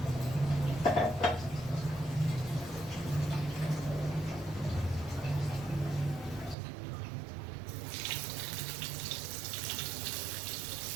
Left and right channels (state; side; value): drops out; left; at 6.6 s